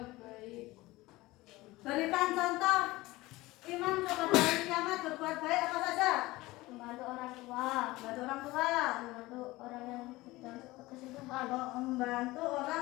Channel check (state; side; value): quieter; right; 19.6 dB